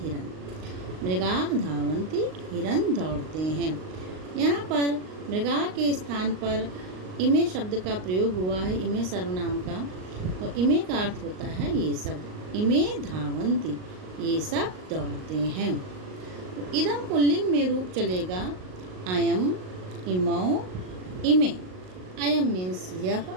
मृगाः धावन्ति, हिरन दौड़ते हैं। यहाँ पर मृगाः के स्थान पर इमे शब्द का प्रयोग हुआ है, इमे सर्वनाम का। तो इमे का अर्थ होता है ये सब। इमे धावन्ति, ये सब दौड़ते हैं। तो इदम पुल्लिंग में रूप चलेगा अयम, इमौ, इमे। अयम मीन्स यह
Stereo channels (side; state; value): left; late; 38 ms